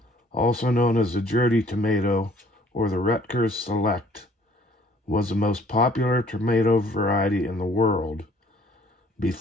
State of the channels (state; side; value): normal; both; correlation 0.57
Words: also known as the Jersey tomato or the Rutgers Select, was the most popular tomato variety in the world